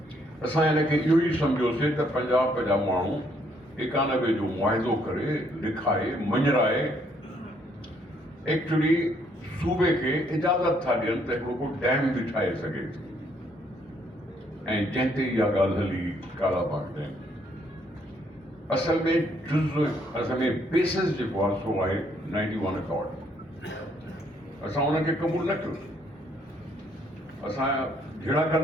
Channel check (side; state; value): both; normal; correlation 0.69